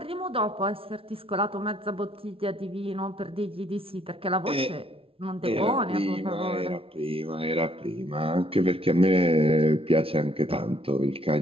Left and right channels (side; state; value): left; late; 0.26 ms